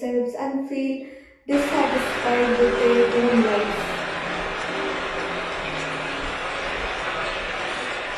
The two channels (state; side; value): identical; both; correlation 1.00